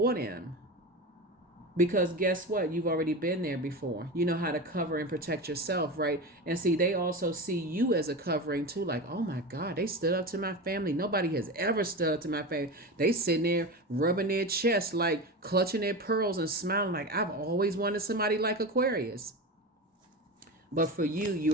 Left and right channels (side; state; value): both; normal; correlation 0.24